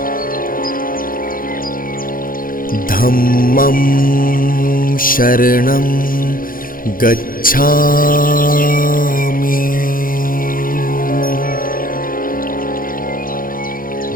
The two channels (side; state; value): right; late; 0.41 ms